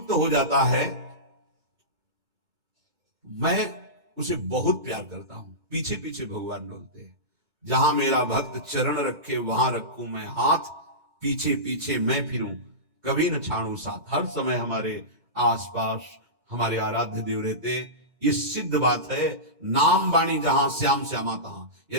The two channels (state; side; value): late; left; 2.2 ms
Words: हो जाता है मैं उसे बहुत प्यार करता हूं। पीछे पीछे भगवान बोलते हैं, जहां मेरा भक्त चरण रखे वहां रखूं मैं हाथ, पीछे पीछे मैं फिरूं कभी न छाड़ू साथ। हर समय हमारे आसपास हमारे आराध्य देव रहते। ये सिद्ध बात है। नाम वाणी जहां श्याम श्यामा तहां।